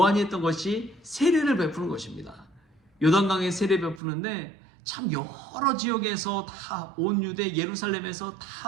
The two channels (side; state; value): left; drops out; at 4.0 s